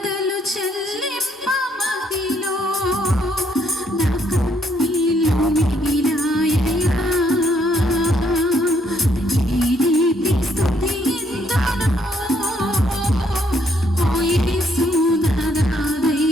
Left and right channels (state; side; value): normal; both; correlation 0.71